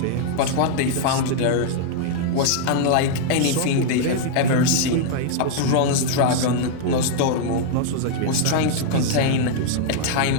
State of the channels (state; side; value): different; both; correlation -0.01